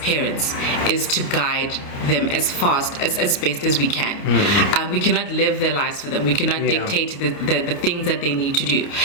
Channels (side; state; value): right; late; 29 ms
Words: is to guide them as best as we can. We cannot live their lives for them. We cannot dictate the things that they need to do.